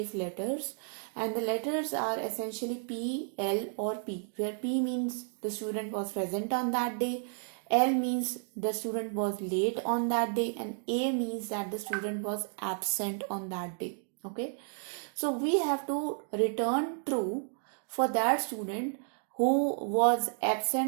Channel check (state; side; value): silent; left; 56 dB below the other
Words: letters, and the letters are essentially P, L or P, where P means the student was present on that day, L means the student was late on that day, and A means that the student was absent on that day. Okay, so we have to return true for that student who was